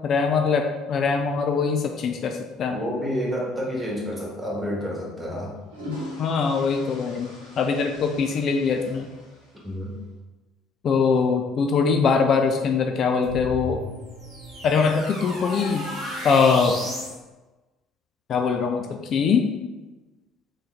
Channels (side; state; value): right; quieter; 4.6 dB